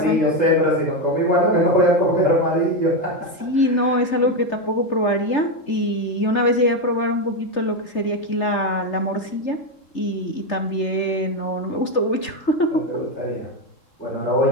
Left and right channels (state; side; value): late; right; 3.4 ms